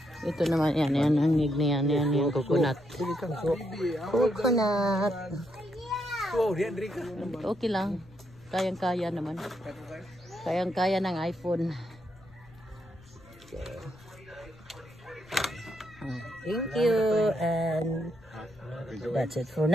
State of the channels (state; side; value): noise; left; rumble, 25 dB below the sound